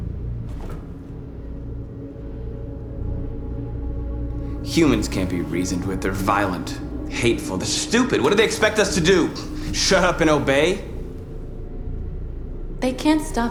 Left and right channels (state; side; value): identical; both; correlation 1.00